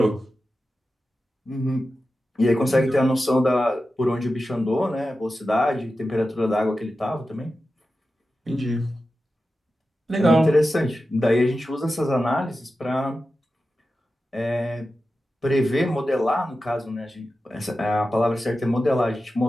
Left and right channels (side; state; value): both; normal; correlation 0.92